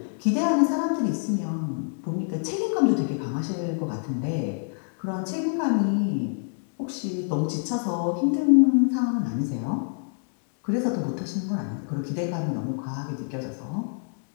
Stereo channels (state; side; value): silent; right; 61 dB below the other